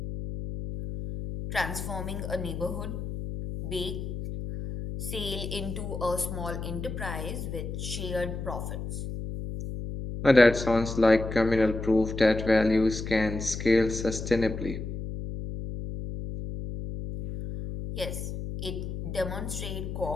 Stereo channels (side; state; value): left; noise; hum, 6 dB below the sound